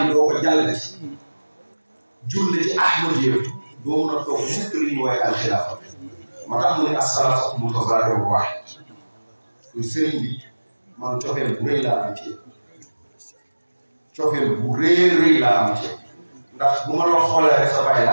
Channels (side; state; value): both; inverted; correlation -1.00